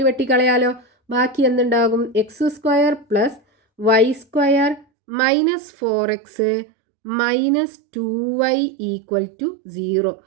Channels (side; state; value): left; drops out; at 4.9 s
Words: വെട്ടിക്കളയാലോ. ബാക്കി എന്തുണ്ടാകും? X square plus y square minus 4x minus 2y equal to 0.